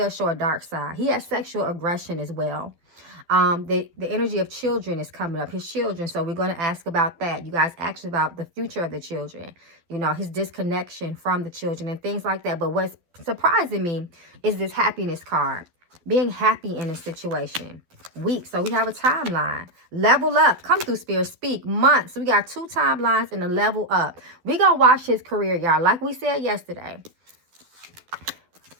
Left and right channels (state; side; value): late; left; 12 ms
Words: show a dark side. He has sexual aggression as well. The energy of children is coming up, his children. So we're going to ask about that. You guys asked about the future of the children, his disconnection from the children and things like that. But what's surprising me is this happiness card, being happy in a situation. Weeks. So we have a timeline. Level up. Come through, Spirit. Speak. Months. So we got 2 timelines and a level up. We're going to watch his career, y'all. Like we said yesterday.